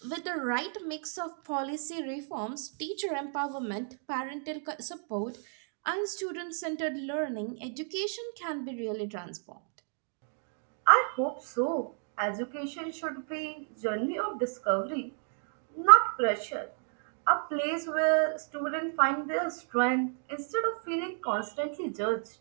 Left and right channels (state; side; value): silent; left; 56 dB below the other